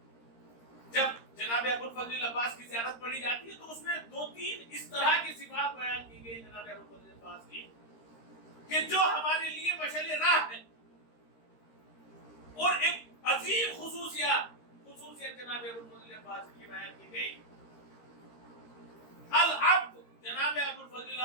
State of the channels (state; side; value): late; right; 13 ms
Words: جب جناب ابوالفضل عباس کی زیارت پڑھی جاتی ہے تو اس میں 2-3 اس طرح کی صفات بیان کی گئی جناب ابوالفضل عباس کی کہ جو ہمارے لیے مشعل راہ ہے. اور ایک عظیم خصوصیت جناب ابوالفضل عباس کی بیان کی گئی. العبد، جناب ابوالفضل